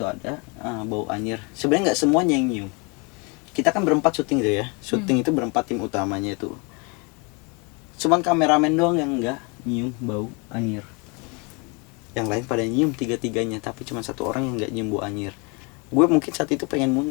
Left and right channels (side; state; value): right; quieter; 31.2 dB